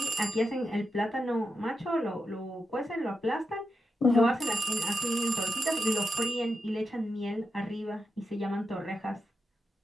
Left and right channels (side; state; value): both; normal; correlation 0.88